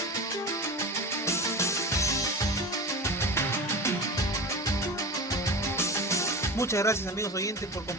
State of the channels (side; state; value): both; normal; correlation 0.29